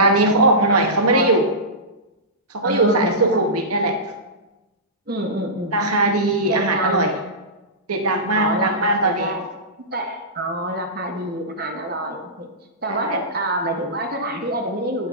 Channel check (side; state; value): both; normal; correlation -0.19